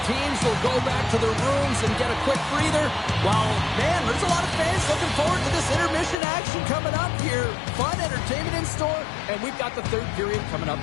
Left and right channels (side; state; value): right; drops out; at 6.2 s